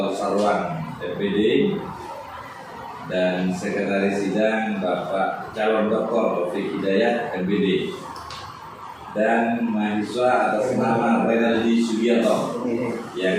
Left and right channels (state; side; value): identical; both; correlation 1.00